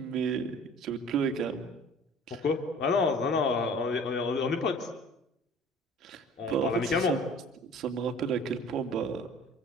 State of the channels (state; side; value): normal; both; correlation 0.47